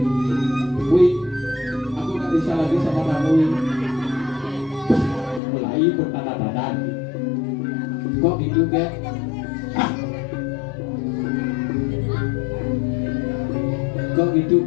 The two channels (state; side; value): drops out; right; at 5.4 s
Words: Wih, aku nggak bisa lagi sama kamu. Mulai bertanda-tanda. Kok gitu ke? Kok gitu